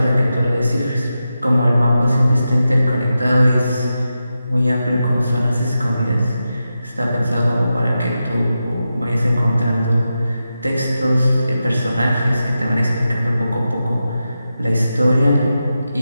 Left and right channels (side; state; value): both; inverted; correlation -0.90